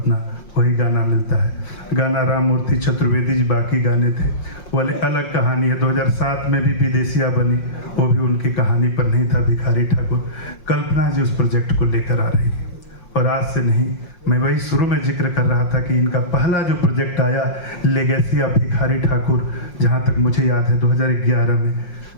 वही गाना मिलता है। गाना राम मूर्ति चतुर्वेदी जी बाकी गाने थे, वो अलग कहानी है। 2007 में भी विदेशिया बनी, वो भी उनकी कहानी पर नहीं था। भिखारी ठाकुर, कल्पना जी उस प्रोजेक्ट को लेकर आ रही है और आज से नहीं, मैं वही शुरू में जिक्र कर रहा था कि इनका पहला जो प्रोजेक्ट आया लेगेसी ऑफ भिखारी ठाकुर, जहाँ तक मुझे याद है 2011 में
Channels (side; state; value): right; late; 5.6 ms